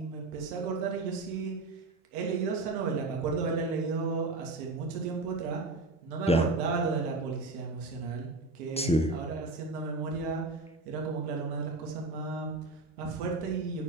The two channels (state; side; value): quieter; left; 3.2 dB